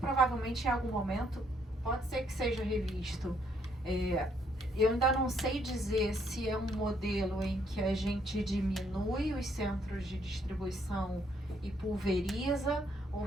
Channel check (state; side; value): normal; both; correlation 0.70